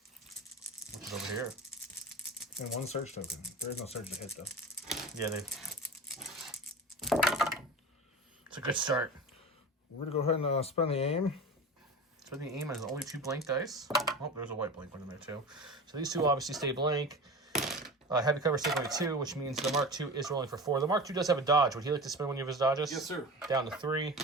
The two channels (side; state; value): both; normal; correlation 0.31